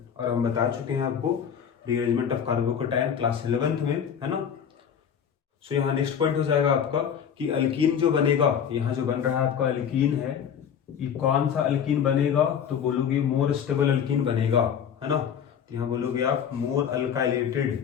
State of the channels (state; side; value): quieter; right; 8.0 dB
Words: और हम बता चुके हैं आपको rearrangement of carbocation class 11th में, है ना। सो यहाँ नेक्स्ट पॉइंट हो जाएगा आपका कि अल्कीन जो बनेगा, यहाँ जो बन रहा है आपका अल्कीन है, ये कौन सा अल्कीन बनेगा, तो बोलोगे मोर स्टेबल अल्कीन बनेगा, है ना। तो यहाँ बोलोगे आप more